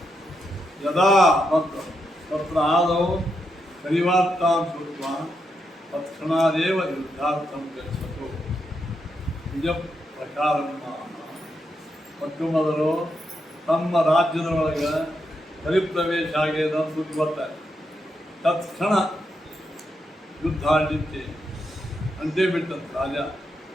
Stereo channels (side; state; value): both; normal; correlation 0.82